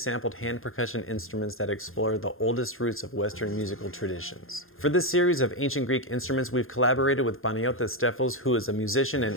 hand percussion instruments that explore the oldest roots of Western musical traditions. For this series of Ancient Greek instruments, we've collaborated with Panagiotis Stefos, who is a musician and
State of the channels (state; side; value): late; right; 0.60 ms